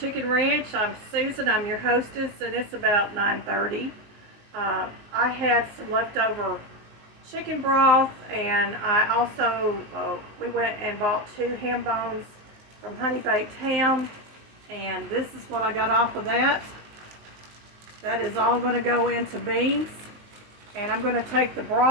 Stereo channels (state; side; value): late; left; 19 ms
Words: Ranch. I'm Susan. I'm your hostess, and it's about 9:30. I had some leftover chicken broth, and I also we went and bought 2 ham bones from Honey Baked Ham, and this is what I got off of that. That is all going to go into beans, and I'm going to take the